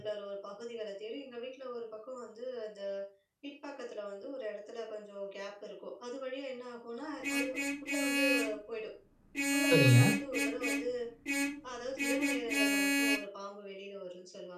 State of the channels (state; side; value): identical; both; correlation 1.00